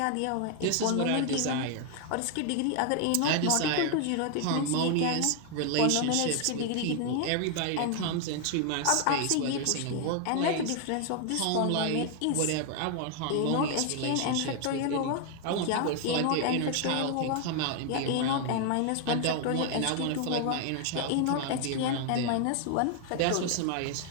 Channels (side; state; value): both; different; correlation 0.00